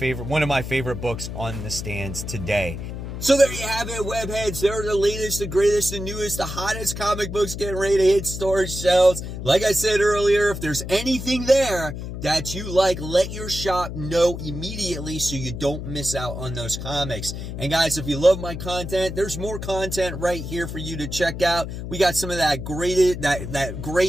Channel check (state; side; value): noise; left; hum, 7 dB below the sound